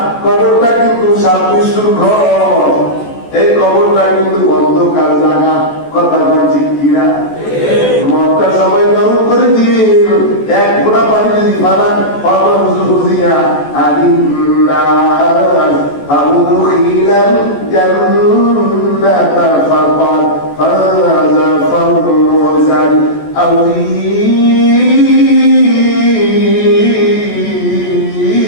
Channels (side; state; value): right; late; 14 ms